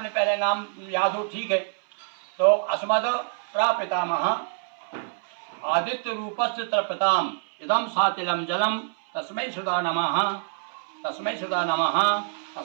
पहले नाम याद हो, ठीक है। तो अस्मद प्रपितामह आदित्य रूपस्य तृप्ताम इदम सातिलम जलम तस्मै सुधा नमः, तस्मै सुधा नमः,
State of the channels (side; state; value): left; silent; 61 dB below the other